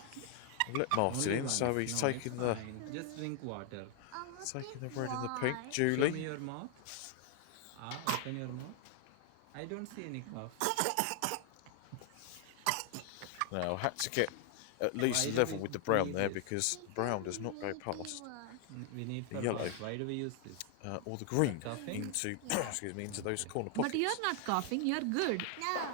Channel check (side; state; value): both; different; correlation 0.00